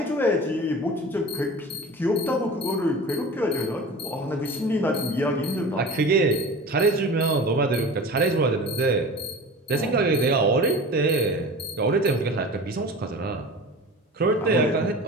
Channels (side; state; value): both; normal; correlation 0.36